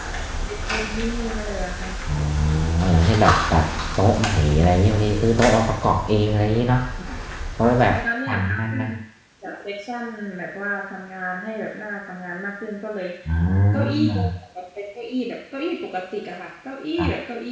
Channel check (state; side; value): identical; both; correlation 1.00